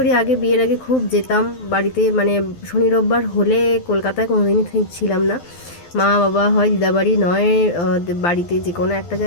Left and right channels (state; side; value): late; right; 12 ms